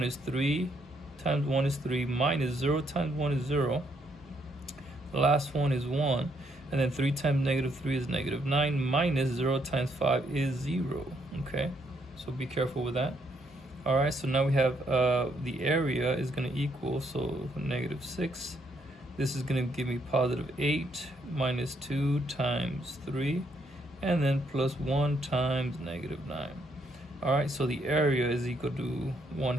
is 3 times 1 is 3, minus 0 times 1 is 0. The last one is 1. And then 3 times negative 3 is negative 9, minus 0 times 5 is 0, okay? So be careful with that. All right, so now we have the area is going to equal, so negative 6. This is going to give me positive 8, minus 2 times 3, and then plus 1 times negative 9. All right, so the area is equal to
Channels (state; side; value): normal; both; correlation 0.73